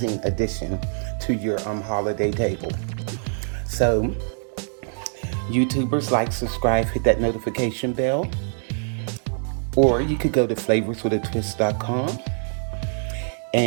addition to your holiday table. So YouTubers, like, subscribe, hit that notification bell, or you could go to flavorswithatwist.com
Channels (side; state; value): left; silent; digital silence